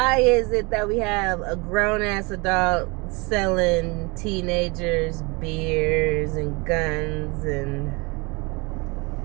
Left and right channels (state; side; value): quieter; left; 27.9 dB